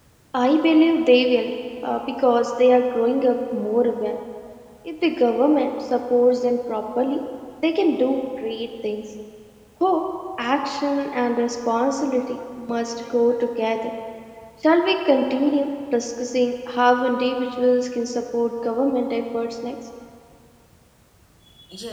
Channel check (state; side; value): identical; both; correlation 1.00